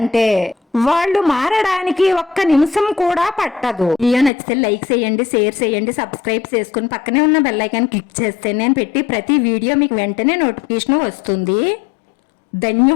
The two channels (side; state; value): right; drops out; at 4.3 s